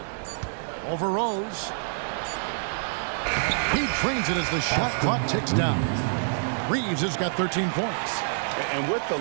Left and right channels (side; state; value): left; silent; digital silence